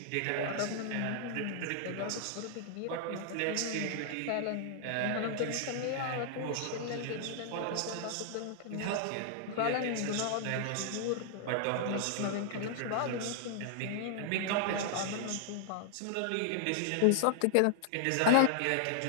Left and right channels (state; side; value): different; both; correlation -0.01